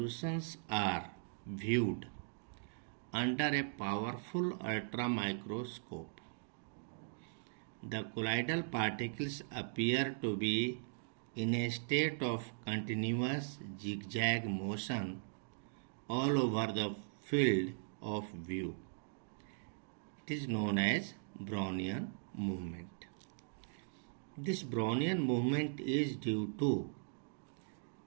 are viewed under a powerful ultramicroscope, the colloidal particles appear to be in a state of continuous zigzag motion all over the field of view. It is known as Brownian movement. This Brownian movement is due to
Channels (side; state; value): left; silent; digital silence